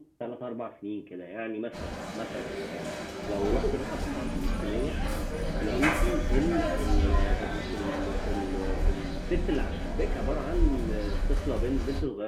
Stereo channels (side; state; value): both; identical; correlation 1.00